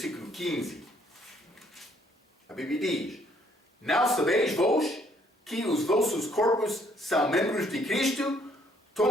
15. A Bíblia diz: Não sabeis vós que os vossos corpos são membros de Cristo?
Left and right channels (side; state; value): both; normal; correlation 0.66